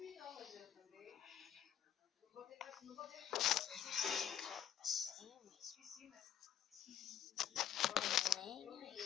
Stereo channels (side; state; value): right; quieter; 10.2 dB